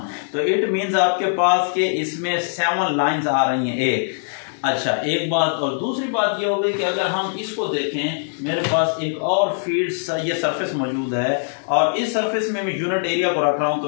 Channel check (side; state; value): right; silent; digital silence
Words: तो इट मींस आपके पास के इसमें 7 लाइंस आ रही हैं एक। अच्छा, एक बात और दूसरी बात ये हो गई कि अगर हम इसको देखें, मेरे पास एक और फील्ड ये सरफेस मौजूद है और इस सरफेस में मैं यूनिट एरिया को रख रहा हूं,